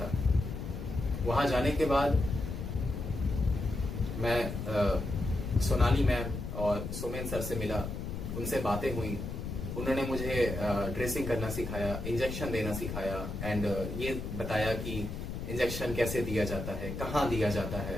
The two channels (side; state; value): left; noise; rumble, 5 dB below the sound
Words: वहां जाने के बाद मैं सोनाली मैम और सोमेन सर से मिला, उनसे बातें हुई। उन्होंने मुझे ड्रेसिंग करना सिखाया, इंजेक्शन देना सिखाया एंड ये बताया कि इंजेक्शन कैसे दिया जाता है, कहाँ दिया जाता